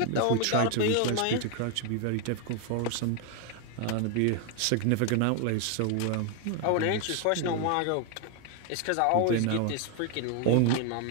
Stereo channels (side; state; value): both; different; correlation 0.01